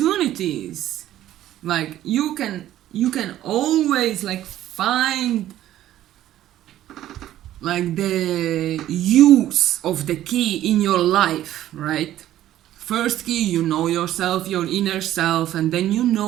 like you can always like find like the use of the key in your life, right? First key, you know yourself, your inner self, and then you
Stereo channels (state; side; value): quieter; left; 13.1 dB